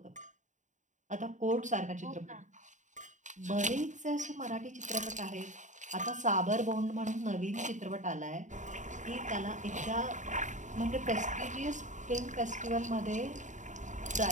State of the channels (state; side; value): late; left; 0.36 ms